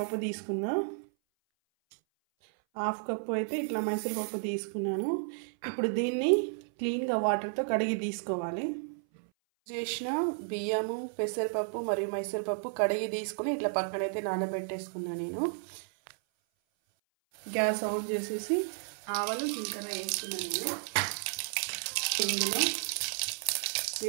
తీసుకున్నా. 1/2 కప్పు అయితే ఇట్లా మైసూరుపప్పు తీసుకున్నాను. ఇప్పుడు దీన్ని క్లీన్గా వాటర్తో కడిగి తీసుకోవాలి. చేసిన బియ్యము, పెసరపప్పు మరియు మైసూరుపప్పు కడిగి తీసుకుని ఇట్లా పక్కనైతే నానబెట్టేసుకున్నా నేను. గ్యాస్ ఆన్ చేసేసి ఆవాలు జీలకర్ర వేసుకున్నాను నేను. ఇందులో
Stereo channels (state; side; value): silent; left; 56 dB below the other